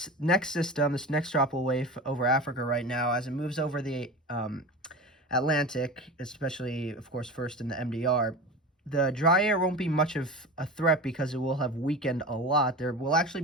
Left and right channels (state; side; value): normal; both; correlation 0.29